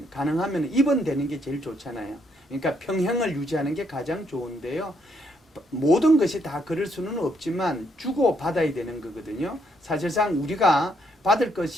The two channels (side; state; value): both; normal; correlation 0.73